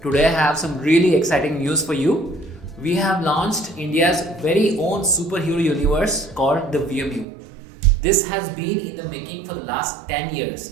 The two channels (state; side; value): drops out; left; at 7.2 s